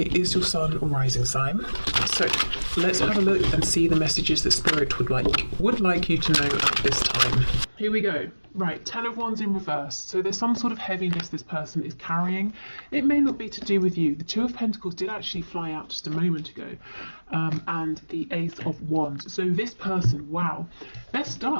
is your sun or rising sign. So let's have a look and see the messages that Spirit would like you to know at this time. Here we go. Right, 10 of Wands in reverse. So there's some sort of heaviness this person is carrying. It may not be to do with you. The 2 of Pentacles did actually fly out just a moment ago. And the Ace of Wands. So this person, wow, they're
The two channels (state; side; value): inverted; both; correlation -1.00